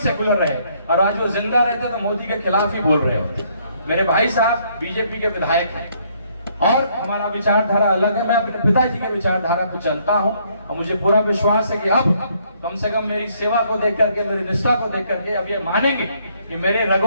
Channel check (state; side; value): inverted; both; correlation -0.68